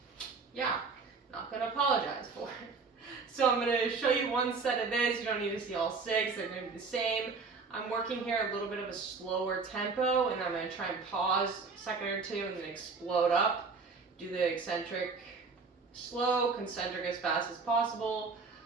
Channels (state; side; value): quieter; left; 4.6 dB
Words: yeah, not gonna apologize for it. So I'm gonna show you one set of this. You don't need to see all 6, they're gonna be the same. I'm working here a little bit of a slower tempo, and I'm gonna try and pause a second or two and then explode up. Do the eccentric slow, concentric as fast as possible.